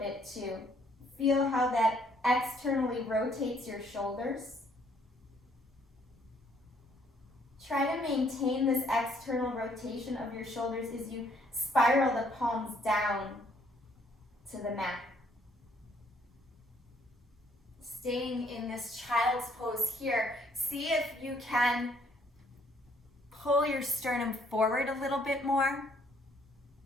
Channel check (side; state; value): both; normal; correlation 0.65